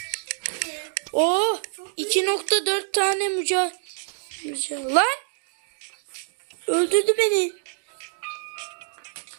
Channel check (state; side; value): silent; left; digital silence